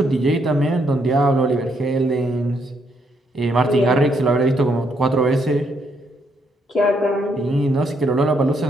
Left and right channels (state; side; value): normal; both; correlation 0.74